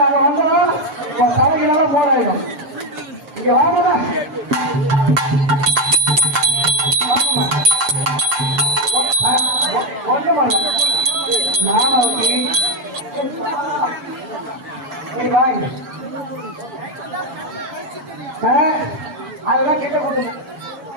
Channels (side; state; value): left; late; 7.5 ms